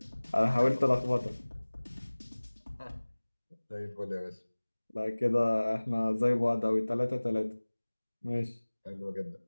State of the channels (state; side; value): inverted; both; correlation -1.00